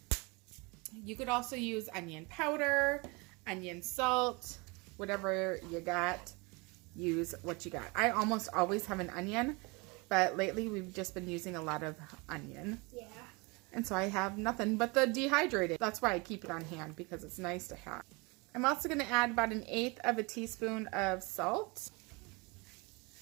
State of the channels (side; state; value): left; quieter; 27.8 dB